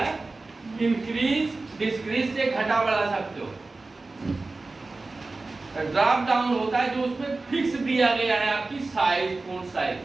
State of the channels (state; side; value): quieter; left; 3.4 dB